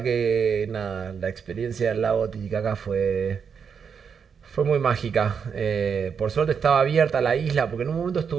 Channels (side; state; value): left; quieter; 6.6 dB